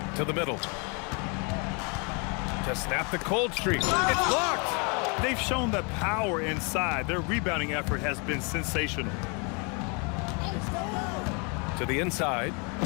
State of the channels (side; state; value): right; quieter; 33.4 dB